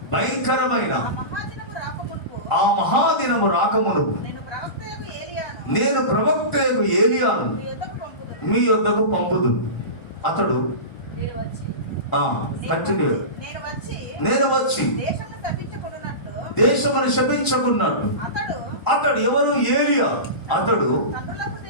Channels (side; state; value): right; late; 1.4 ms